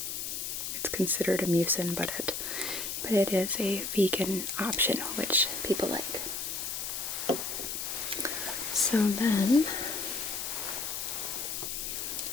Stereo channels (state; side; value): noise; left; hiss, 4 dB below the sound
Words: It's considered a mucin, but it is a vegan option, which people like. So then,